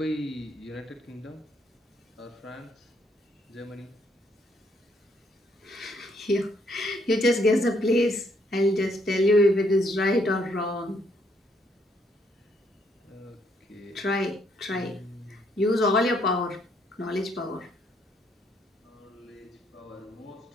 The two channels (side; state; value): both; normal; correlation 0.71